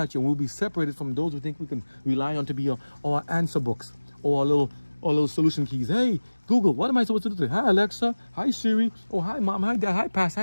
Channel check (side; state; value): both; inverted; correlation -1.00